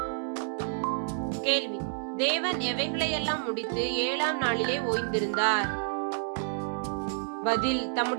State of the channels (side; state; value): left; silent; digital silence